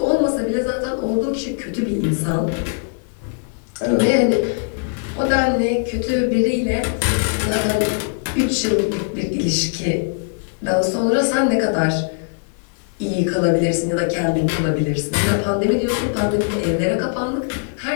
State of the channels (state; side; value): silent; right; digital silence